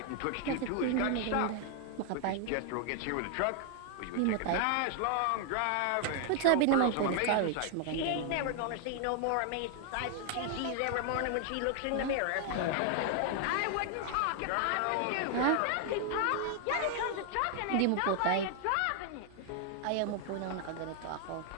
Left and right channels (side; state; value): both; different; correlation 0.00